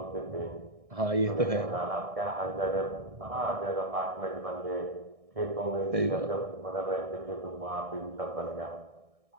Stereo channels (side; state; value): left; late; 1.6 ms